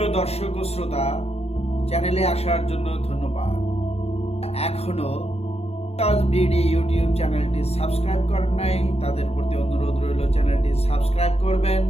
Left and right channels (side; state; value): right; late; 0.30 ms